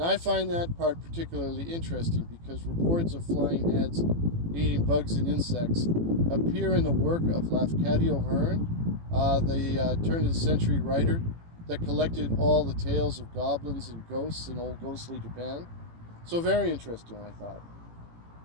I find that part particularly interesting because reports of flying heads eating bugs and insects appear in the work of Lafcadio Hearn, the turn-of-the-century writer that collected all the tales of goblins and ghosts in old ghostly Japan. So very interesting, I thought.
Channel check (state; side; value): late; left; 18 ms